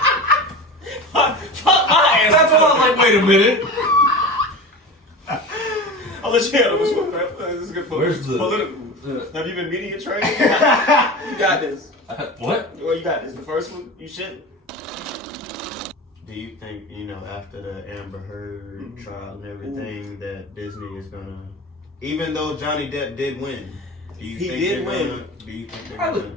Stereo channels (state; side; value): normal; both; correlation 0.30